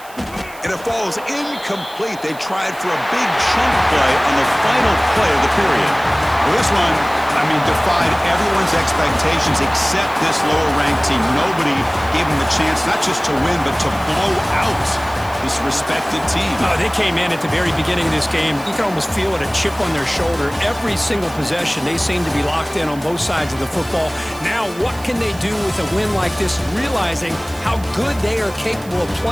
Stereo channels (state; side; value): noise; right; hiss, 20 dB below the sound